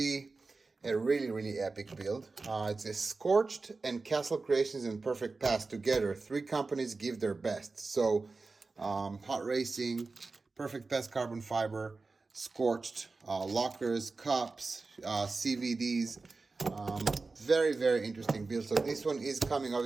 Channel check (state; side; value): quieter; left; 3.9 dB